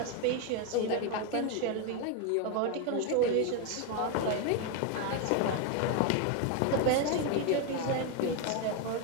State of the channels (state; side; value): different; both; correlation 0.01